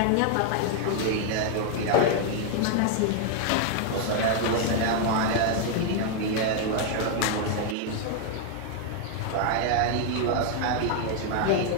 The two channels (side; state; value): both; different; correlation 0.00